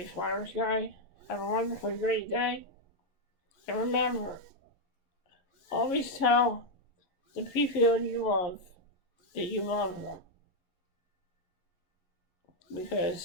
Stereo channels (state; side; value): late; right; 11 ms